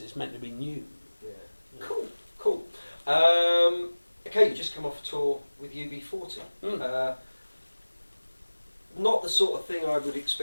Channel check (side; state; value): both; inverted; correlation -1.00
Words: meant to be new. Yeah. Cool. Okay, you just come off a tour with UB40. Not the sort of thing I would